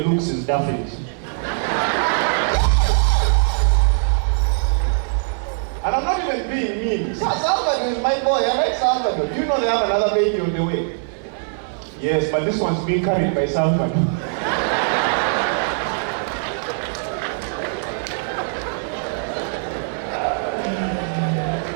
is Daphne's. And I'm not even being mean. Salvador is my boy. I like Salvador. Do you know they have another baby on the way? Yes, but this one's being carried by Salvador.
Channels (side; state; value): left; silent; 62 dB below the other